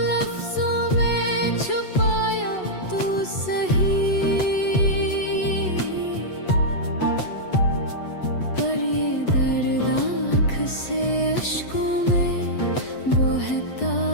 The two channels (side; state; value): right; late; 8.1 ms